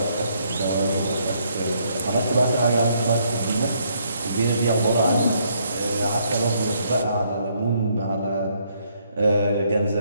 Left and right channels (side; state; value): both; inverted; correlation -0.70